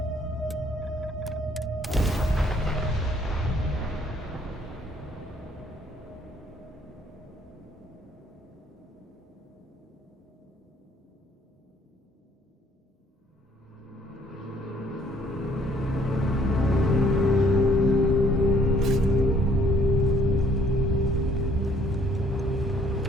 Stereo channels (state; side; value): normal; both; correlation 0.62